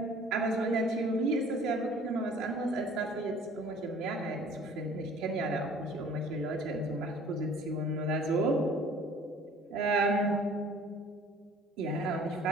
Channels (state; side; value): normal; both; correlation 0.51